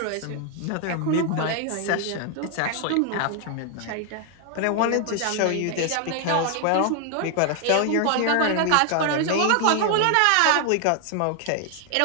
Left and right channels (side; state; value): both; different; correlation 0.00